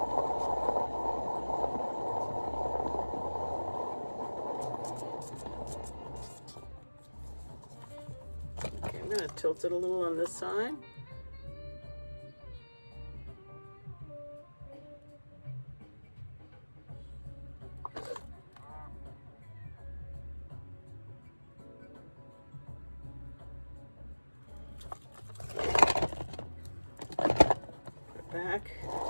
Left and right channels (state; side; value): inverted; both; correlation -1.00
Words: Okay, I'm going to tilt it a little on this side. Back.